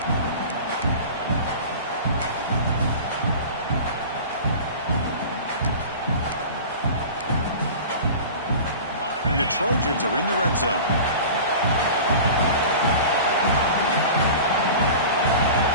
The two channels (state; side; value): inverted; both; correlation -0.36